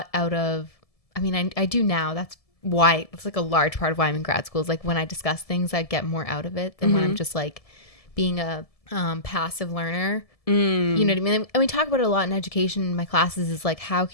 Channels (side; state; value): right; late; 1.7 ms